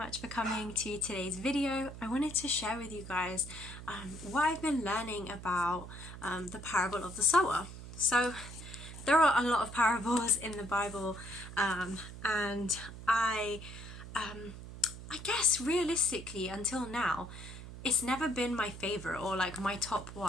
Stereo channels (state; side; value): noise; right; hum, 12 dB below the sound